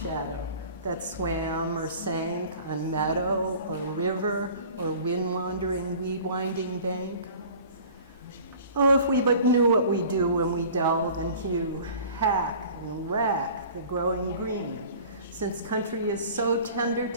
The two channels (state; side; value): inverted; both; correlation -0.45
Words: that swam or sank on meadow or river or wind-wandering, weed-winding bank. Oh, if we but knew what we do when we delve and hew, hack and rack the growing green, since country is so tender